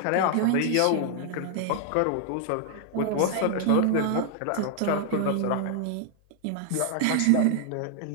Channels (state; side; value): different; both; correlation 0.00